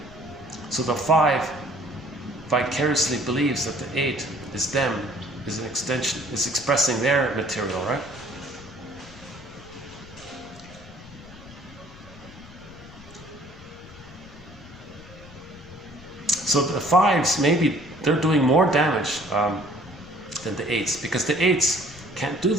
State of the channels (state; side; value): noise; left; rumble, 19 dB below the sound